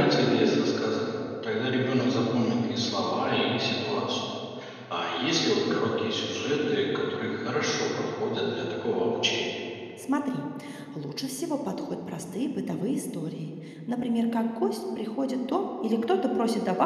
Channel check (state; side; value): identical; both; correlation 1.00